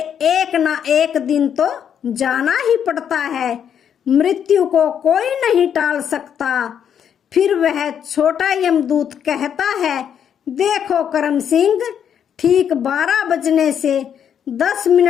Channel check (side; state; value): right; quieter; 8.5 dB